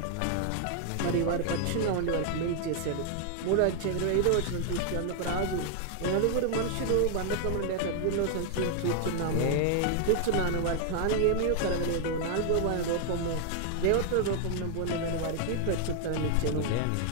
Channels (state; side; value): different; both; correlation 0.00